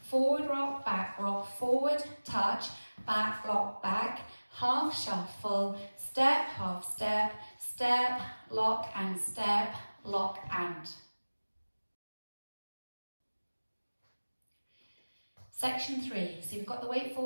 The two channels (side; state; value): both; inverted; correlation -1.00